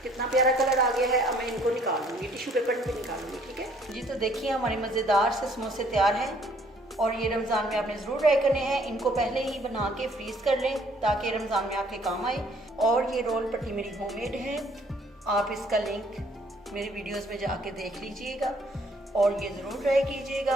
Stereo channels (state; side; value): normal; both; correlation 0.61